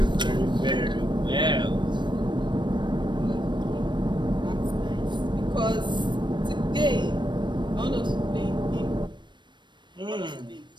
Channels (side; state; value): left; late; 0.22 ms